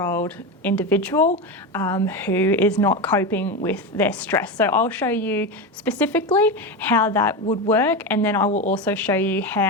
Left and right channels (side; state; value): both; normal; correlation 0.17